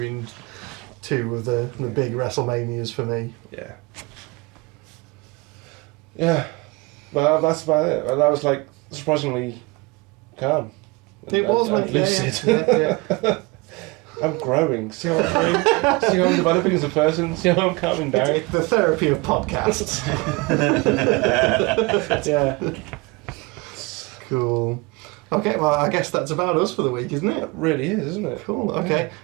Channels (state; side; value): quieter; left; 25.2 dB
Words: two of the big WrestleManias for me. Yeah. Yeah. Well, that's about it. And that was like surprisingly calm. It was, and lucid. Yeah. I'm growing. See how I'm growing? See how I'm developing as a person? See how I'm calming down? It's the therapy of podcasts. Yeah. Cool. Okay, well, I guess that's about us for the week, isn't it? It really is, isn't it? Cool, okay.